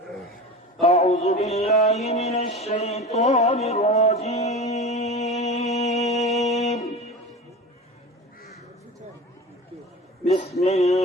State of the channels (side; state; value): both; normal; correlation 0.32